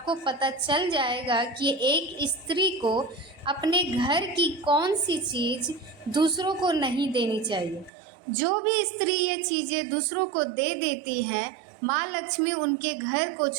पता चल जाएगा कि एक स्त्री को अपने घर की कौन सी चीज़ दूसरों को नहीं देनी चाहिए। जो भी स्त्री ये चीज़ें दूसरों को दे देती हैं, माँ लक्ष्मी उनके घर को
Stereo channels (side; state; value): left; drops out; at 7.9 s